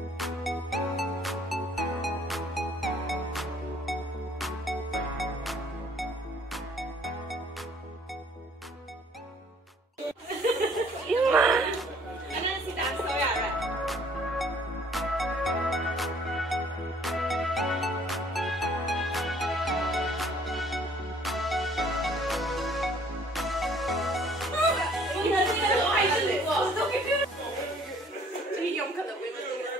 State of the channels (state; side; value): normal; both; correlation 0.58